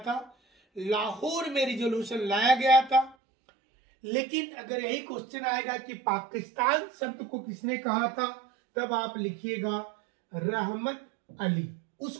लाहौर में रेजोल्यूशन लाया गया था। लेकिन अगर यही क्वेश्चन आएगा कि पाकिस्तान शब्द को किसने कहा था, तब आप लिखिएगा रहमत अली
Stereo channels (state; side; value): drops out; left; at 3.2 s